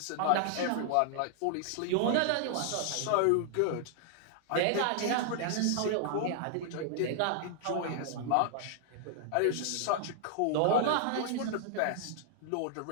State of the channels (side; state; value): both; different; correlation -0.01